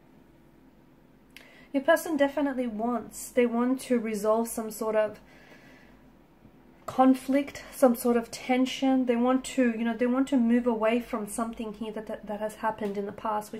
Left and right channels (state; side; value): identical; both; correlation 1.00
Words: definitely they want to resolve some sort of conflict, some sort of tension. They want to, you know, they want to move away from something here that has happened in the past,